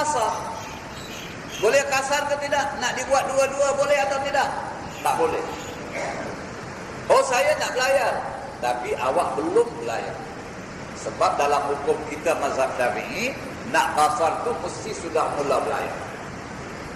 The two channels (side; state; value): both; identical; correlation 1.00